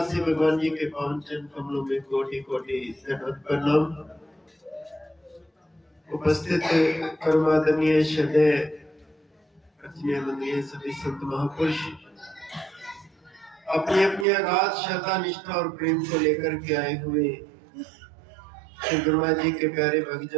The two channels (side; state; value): left; drops out; at 14.2 s